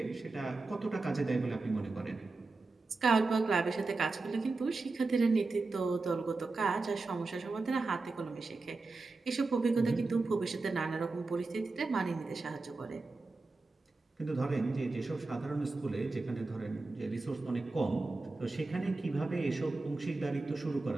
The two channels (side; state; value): left; quieter; 3.5 dB